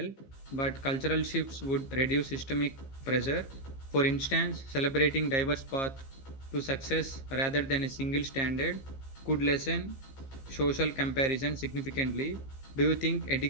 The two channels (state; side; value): late; right; 15 ms